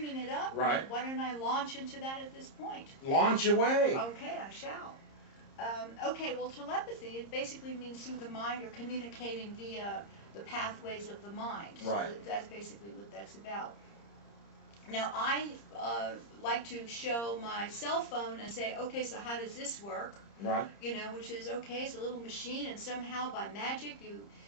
it up, Right. why don't I launch into that at this point? Launch away. Okay, I shall. Okay, well, telepathy, it basically means through the mind or communicating via the pathways of the mind. Right. So that's basically what that's about. Now, I like to show my cell phone and say, okay, so how does this work? Right. You know, which is, okay, it's a little machine, and somehow by magic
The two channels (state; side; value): late; right; 30 ms